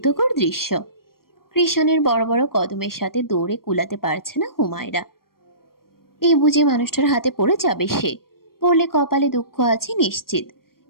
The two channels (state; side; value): late; right; 0.93 ms